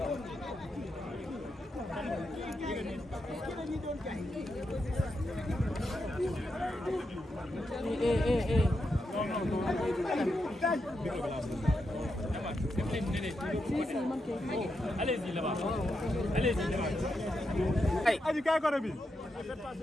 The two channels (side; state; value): both; normal; correlation 0.85